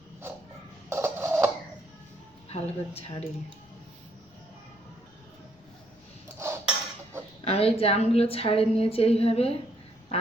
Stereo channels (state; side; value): noise; left; rumble, 29 dB below the sound